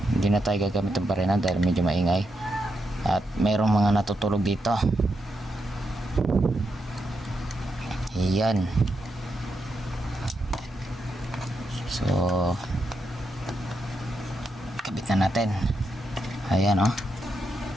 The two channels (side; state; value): both; normal; correlation 0.83